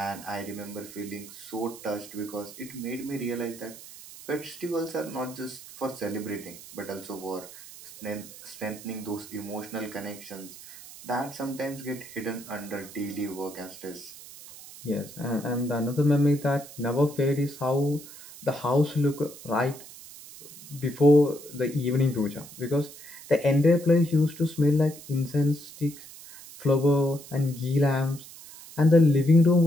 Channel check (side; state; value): right; noise; hiss, 16 dB below the sound